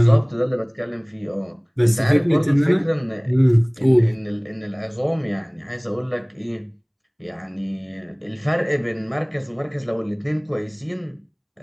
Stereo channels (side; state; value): both; identical; correlation 1.00